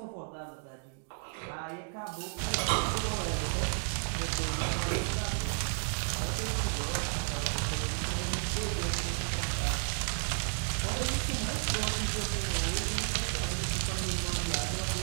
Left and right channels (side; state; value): left; silent; 56 dB below the other